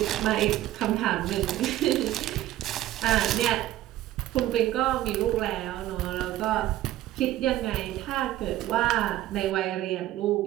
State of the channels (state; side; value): quieter; left; 14.5 dB